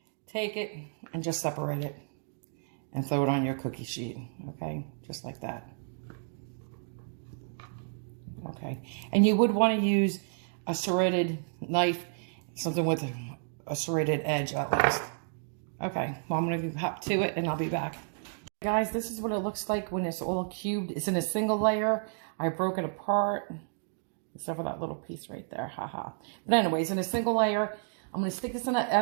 take it and just separate it and throw it on your cookie sheet. Okay, just like that. Okay, and you would want to use a serrated knife, something with a serrated edge at least. Okay, well, I'm going to hop to it and I'll be back. Guys, this is what it looks like when it's all cubed. It's in a single layer. I broke it apart. Except for that little piece right there, haha. But anyways, in a single layer, I'm going to stick this in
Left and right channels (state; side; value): silent; left; digital silence